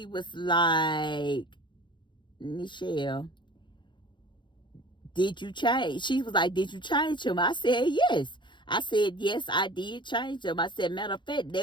was like, Nichelle, did you change? She was like, did you change him? I said, yes. I said, yes, I did change him. I said, matter of fact,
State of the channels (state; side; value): late; right; 0.23 ms